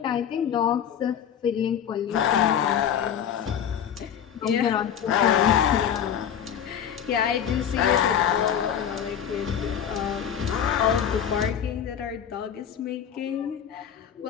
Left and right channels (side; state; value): right; quieter; 8.8 dB